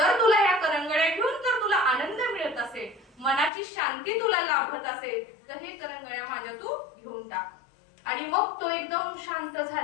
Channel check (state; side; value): drops out; right; at 3.5 s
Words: तुला ह्या करंगळ्या घेऊन जर तुला आनंद मिळत असेल, मनाची शांती तुला लाभत असेल, तर हे करंगळ्या माझ्या तू घेऊन टाक. आणि मग तो एकदम शांत